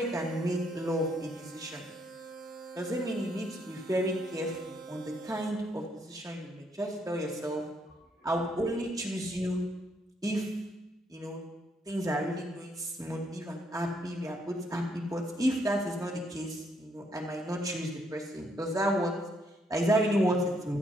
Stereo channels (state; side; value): normal; both; correlation 0.72